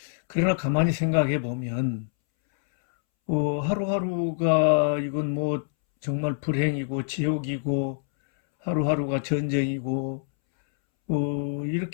그러나 가만히 생각해 보면 하루하루가 이건 뭐 정말 불행이고 지옥이고 하루하루가 전쟁이고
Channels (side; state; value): right; silent; 61 dB below the other